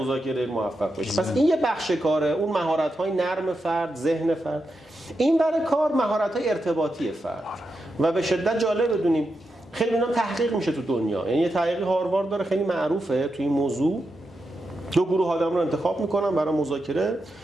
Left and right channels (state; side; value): normal; both; correlation 0.87